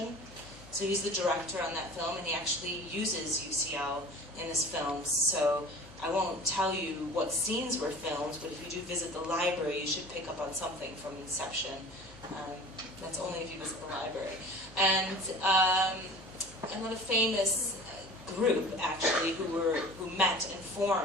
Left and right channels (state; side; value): noise; left; hum, 21 dB below the sound